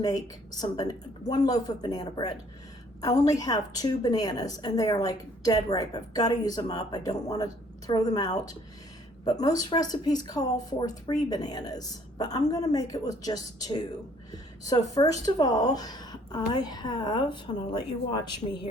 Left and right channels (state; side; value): normal; both; correlation 0.60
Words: one loaf of banana bread. I only have 2 bananas and they are like dead ripe. I've got to use them up. I don't want to throw them out. But most recipes call for 3 bananas, but I'm going to make it with just 2. So first of all, and I'll let you watch me